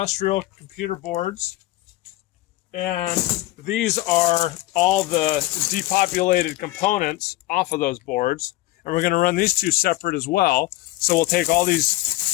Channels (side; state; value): right; quieter; 17.6 dB